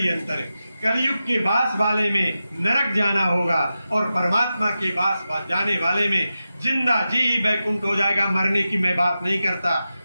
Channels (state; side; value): inverted; both; correlation -0.92